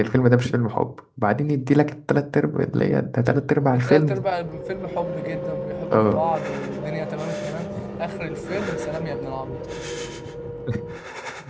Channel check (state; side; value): identical; both; correlation 1.00